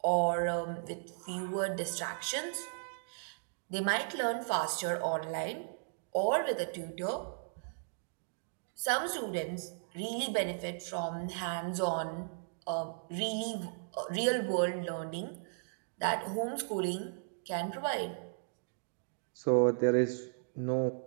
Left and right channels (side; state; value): left; silent; digital silence